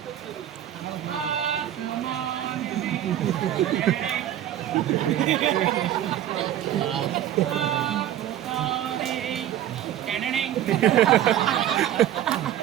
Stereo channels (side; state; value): left; quieter; 11.8 dB